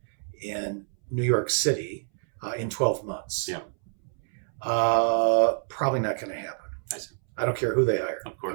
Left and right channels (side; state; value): left; silent; 60 dB below the other